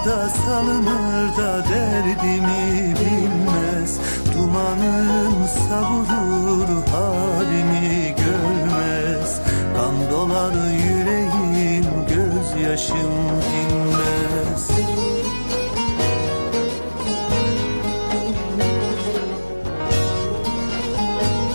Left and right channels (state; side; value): inverted; both; correlation -1.00